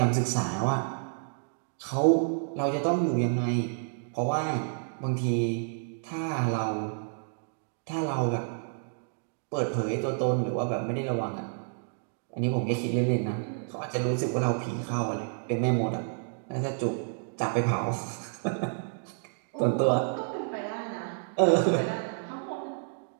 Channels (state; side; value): silent; left; digital silence